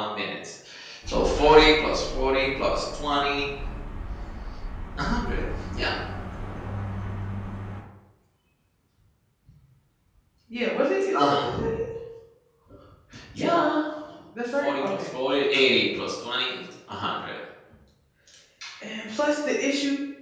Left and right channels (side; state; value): both; identical; correlation 1.00